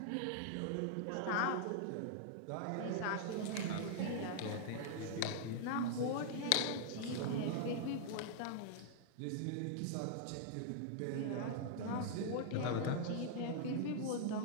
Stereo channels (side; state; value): both; different; correlation -0.01